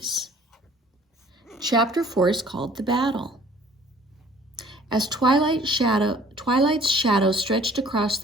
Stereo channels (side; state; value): both; normal; correlation 0.54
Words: Chapter 4 is called The Battle. As Twilight's shadow stretched across